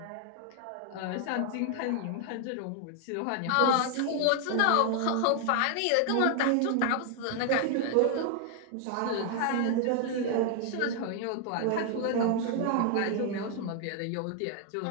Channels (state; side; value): different; both; correlation 0.00